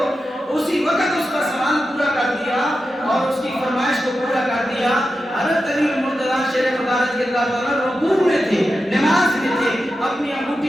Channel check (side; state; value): both; normal; correlation 0.90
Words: اسی وقت اس کا سوال پورا کر دیا اور اس کی فرمائش کو پورا کر دیا. حضرت علی المرتضیٰ شیر خدا رضی اللہ تعالیٰ رکوع میں تھے, نماز میں تھے, اپنی